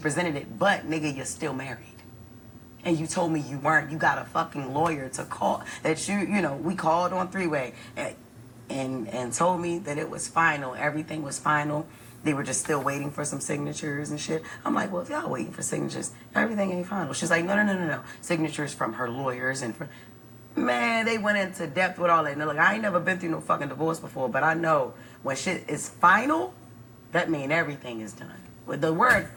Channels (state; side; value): identical; both; correlation 1.00